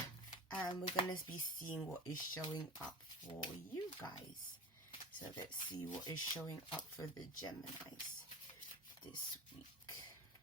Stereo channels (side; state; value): both; normal; correlation 0.33